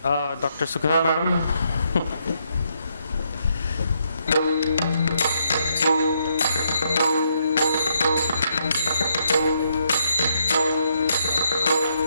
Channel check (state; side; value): inverted; both; correlation -0.75